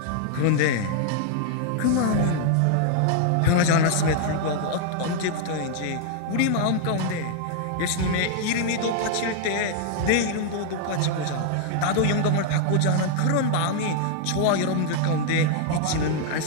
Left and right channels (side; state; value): both; different; correlation 0.00